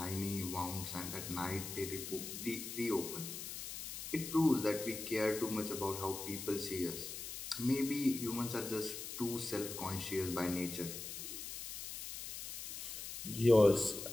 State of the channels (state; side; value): noise; left; hiss, 7 dB below the sound